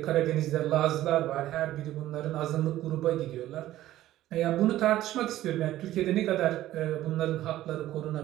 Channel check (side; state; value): left; quieter; 14.3 dB